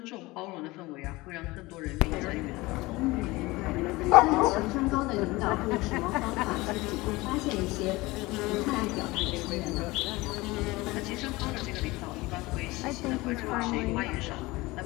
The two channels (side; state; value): right; quieter; 21.2 dB